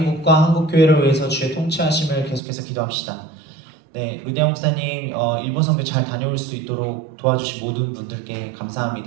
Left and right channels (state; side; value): drops out; left; at 2.4 s